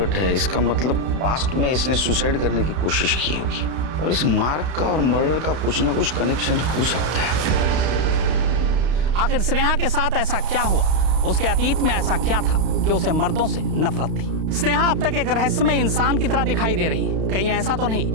है, इसका मतलब पास्ट में इसने सुसाइड करने की कोशिश की होगी और इस मार्क का और मर्डर का कुछ ना कुछ कनेक्शन हो सकता है। आखिर स्नेहा के साथ ऐसा क्या हुआ? उसके अतीत में ऐसा क्या था कि उसे मर्दों से नफरत थी? स्नेहा अब तक एक रहस्यमय इंसान की तरह दिखाई दे रही है। कहीं ऐसा तो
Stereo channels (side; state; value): left; late; 32 ms